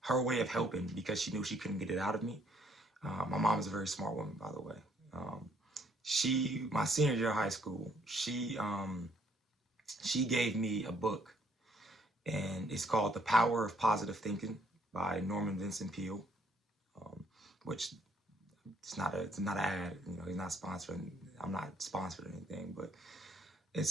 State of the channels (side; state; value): both; normal; correlation 0.67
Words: her way of helping, because she knew she couldn't get it out of me. My mom is a very smart woman, by the way. My senior year of high school, she gave me a book, and it's called The Power of Positive Thinking by Norman Vincent Peale, which it's not an ad. He's not sponsoring. I'm not sponsored or anything, but